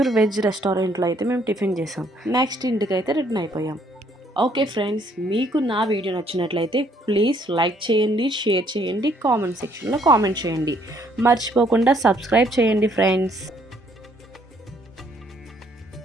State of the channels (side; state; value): both; normal; correlation 0.66